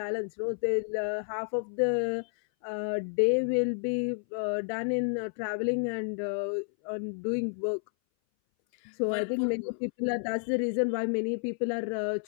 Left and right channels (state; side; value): silent; right; 57 dB below the other